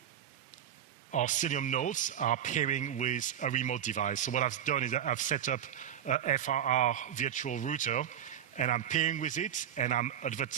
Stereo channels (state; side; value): quieter; left; 9.8 dB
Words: our Cilium nodes are pairing with a remote device. So what I've done is I've set up a FRR virtual router, and I'm pairing with it, and I'm